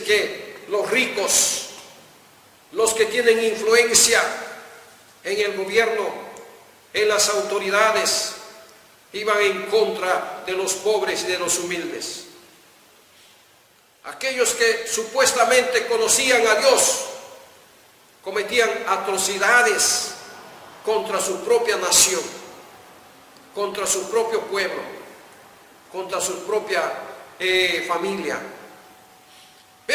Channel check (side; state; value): both; identical; correlation 1.00